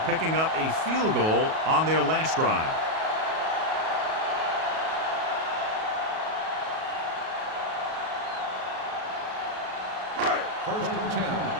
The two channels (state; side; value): late; left; 37 ms